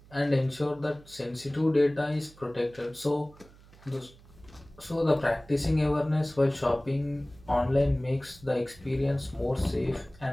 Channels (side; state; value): right; noise; hum, 24 dB below the sound